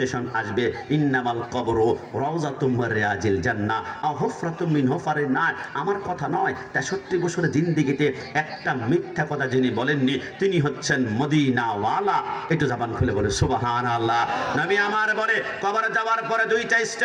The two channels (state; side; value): identical; both; correlation 1.00